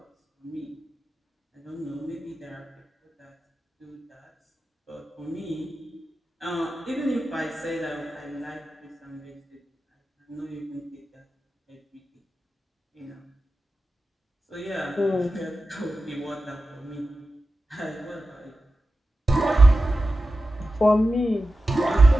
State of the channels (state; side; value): normal; both; correlation 0.93